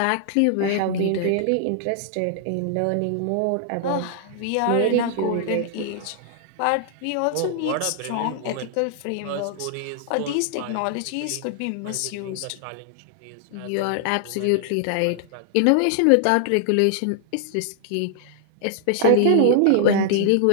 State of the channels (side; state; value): both; different; correlation 0.00